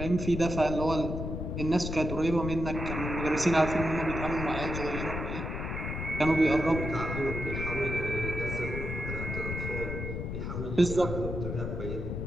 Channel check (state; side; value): noise; left; rumble, 4 dB below the sound